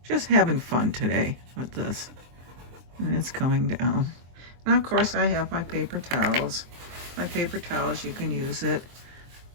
having fun today with this. And it's coming down. Now, of course, I have my paper towels. My paper towels, you can use it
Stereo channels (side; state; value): left; late; 23 ms